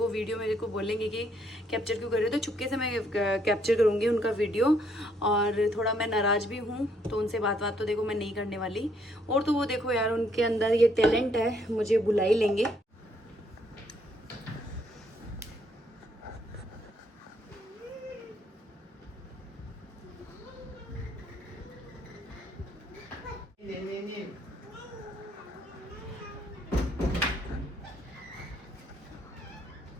वीडियो मेरे को बोलेंगे कि कैप्चर क्यों कर रहे हो, तो चुपके से मैं कैप्चर करूँगी उनका वीडियो। और थोड़ा मैं नाराज़ भी हूँ, तो उनसे बात तो देखो मैं नहीं करने वाली। और तो वो देखो यार, उनके अंदर ये टैलेंट है, मुझे बुला ही लेंगे।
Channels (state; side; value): normal; both; correlation 0.69